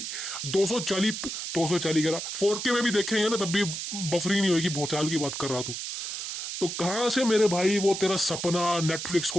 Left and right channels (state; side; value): noise; right; hiss, 5 dB below the sound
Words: 240 करा 4K में भी देखेंगे ना तब भी बफरिंग नहीं होगी। भूचाल की बात कर रहा तू, तो कहां से मेरे भाई वो तेरा सपना नेटफ्लिक्स